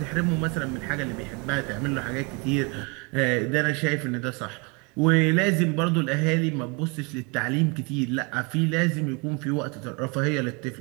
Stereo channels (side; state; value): left; quieter; 31.0 dB